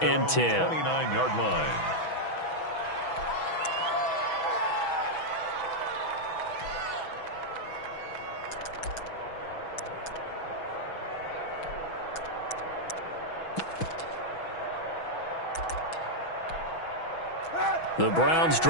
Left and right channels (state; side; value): late; right; 6.1 ms